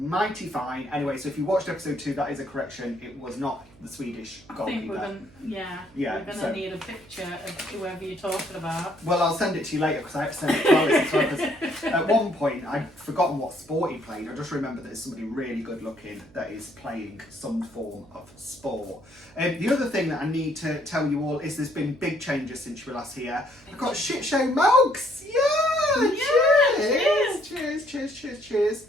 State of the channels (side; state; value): right; noise; hum, 26 dB below the sound